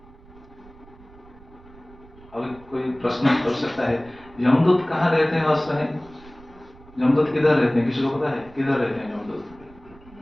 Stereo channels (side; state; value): right; noise; rumble, 23 dB below the sound